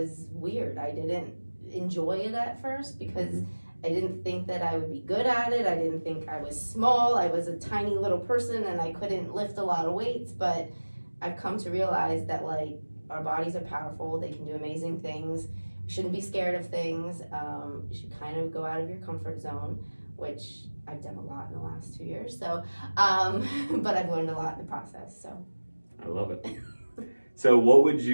weird. I didn't enjoy it at first because I didn't think that I would be good at it. I didn't think I was small. I was a tiny little person and I couldn't lift a lot of weights, but I've come to realize that our bodies are powerful. They can do amazing things. You shouldn't be scared of things. You should kind of go out of your comfort zone, which I've done a lot in the last 2 years. So, but I've learned a lot in the process. So, I love it. So, what would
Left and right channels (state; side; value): inverted; both; correlation -1.00